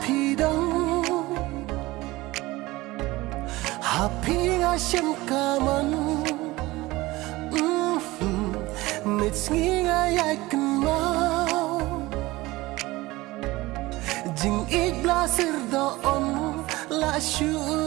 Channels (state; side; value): quieter; left; 19.8 dB